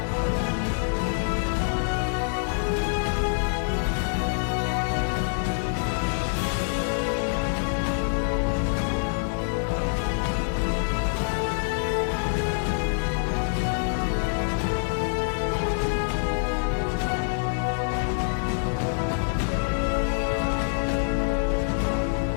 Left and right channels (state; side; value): silent; right; 61 dB below the other